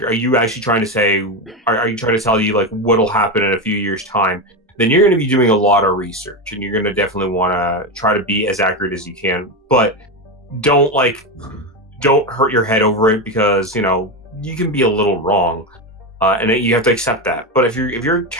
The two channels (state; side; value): normal; both; correlation 0.14